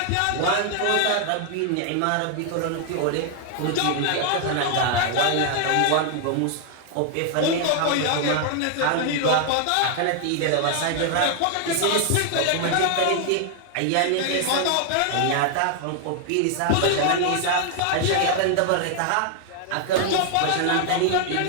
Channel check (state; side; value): different; both; correlation 0.00